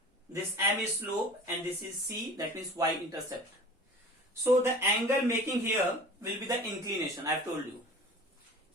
This m is slope and this is c, that means y-intercept. So the angle making here will be the inclination, I have told you.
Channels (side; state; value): both; normal; correlation 0.41